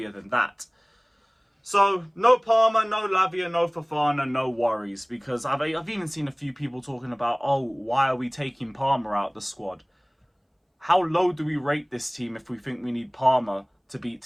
than that. So, no Palmer, no Lavia, no Fofana, no worries. Because I've even seen a few people talking about, oh, why are we taking Palmer out the squad? How low do we rate this team if we think we need Palmer to beat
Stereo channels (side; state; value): both; identical; correlation 1.00